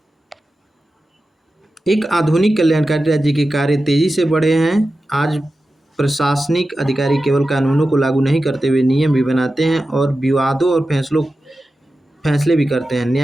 एक आधुनिक कल्याणकारी राज्य के कार्य तेजी से बढ़े हैं। आज प्रशासनिक अधिकारी केवल कानूनों को लागू नहीं करते हुए नियम भी बनाते हैं और विवादों और फैसले भी करते हैं।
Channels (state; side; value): normal; both; correlation 0.93